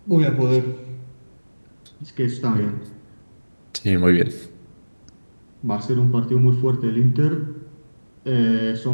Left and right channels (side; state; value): both; inverted; correlation -1.00